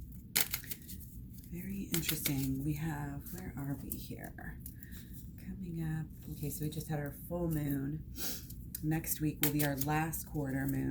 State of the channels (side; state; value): both; identical; correlation 1.00